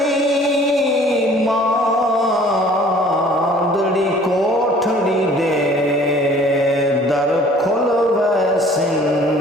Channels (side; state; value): both; normal; correlation 0.52